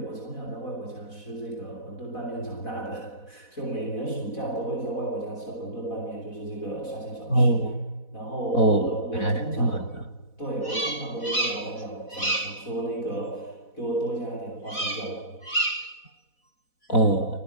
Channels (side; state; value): right; late; 4.1 ms